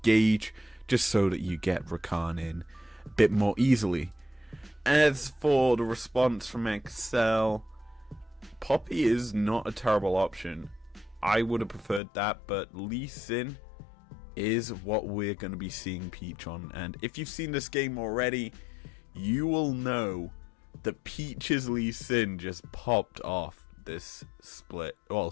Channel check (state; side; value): drops out; right; at 12.0 s